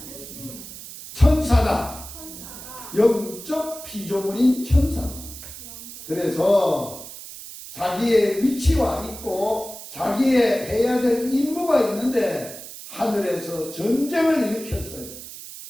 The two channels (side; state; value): right; noise; hiss, 13 dB below the sound